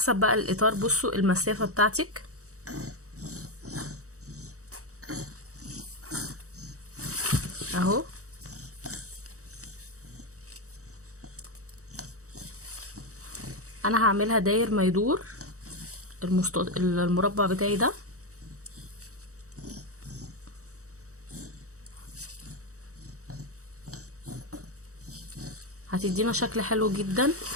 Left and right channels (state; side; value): late; left; 0.65 ms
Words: بقى الاطار. بصوا المسافه بتاعتك اهو. انا هعملها داير ما يدور المربع بتاعي ده. هتدي هتدينا شكل حلو جدا،